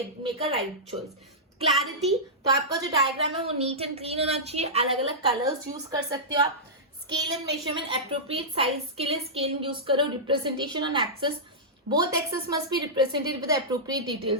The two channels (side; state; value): both; normal; correlation -0.13